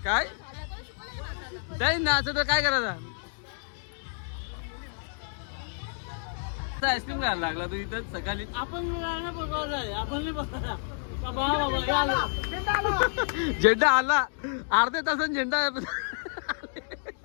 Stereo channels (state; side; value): silent; right; digital silence